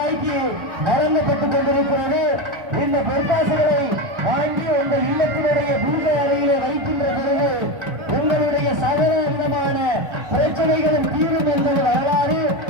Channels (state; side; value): late; left; 1.3 ms